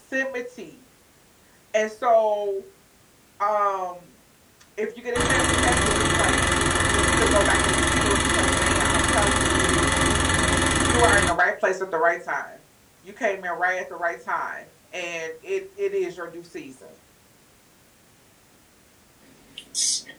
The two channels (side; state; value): both; identical; correlation 1.00